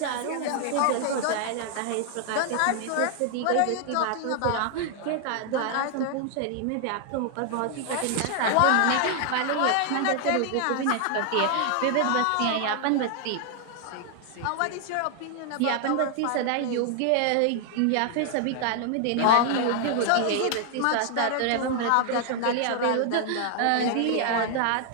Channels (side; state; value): both; different; correlation 0.00